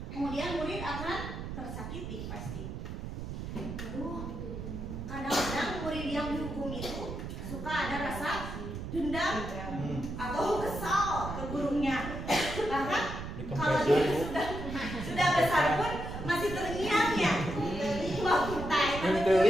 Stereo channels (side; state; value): right; noise; rumble, 7 dB below the sound